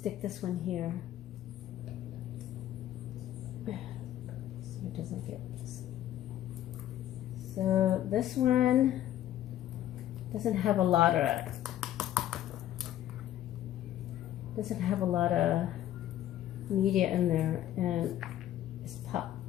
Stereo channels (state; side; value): quieter; right; 12.4 dB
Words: this one here. So it doesn't get this. So this one doesn't have a lot of media in there, and